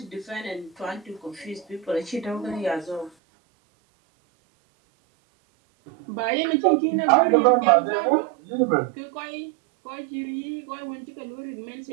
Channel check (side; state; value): left; drops out; at 3.1 s